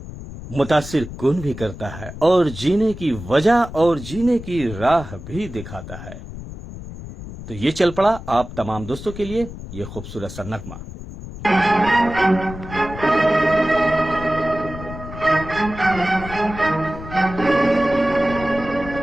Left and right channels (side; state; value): left; noise; rumble, 12 dB below the sound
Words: मुतासिर कुन भी करता है, और जीने की वजह और जीने की राह भी दिखाता है। तो ये चल पड़ा आप तमाम दोस्तों के लिए ये खूबसूरत सा नगमा।